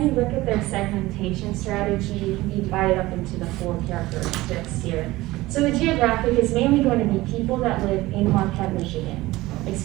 you look at their segmentation strategy, you can divide it up into the 4 characteristics here. So the geographic is mainly going to be people that live in Marquette, Michigan.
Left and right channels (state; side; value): quieter; left; 18.6 dB